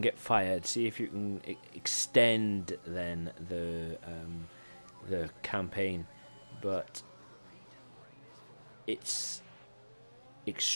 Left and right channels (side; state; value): both; inverted; correlation -1.00